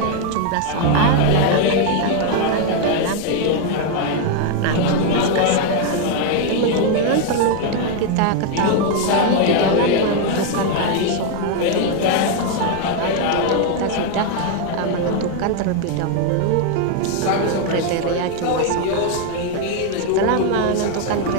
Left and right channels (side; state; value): both; different; correlation 0.01